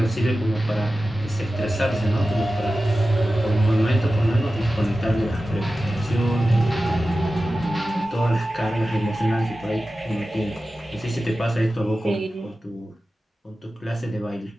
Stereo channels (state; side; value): normal; both; correlation 0.94